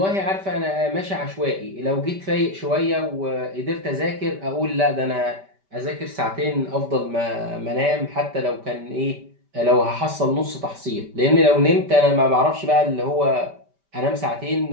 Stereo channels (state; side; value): late; left; 5.1 ms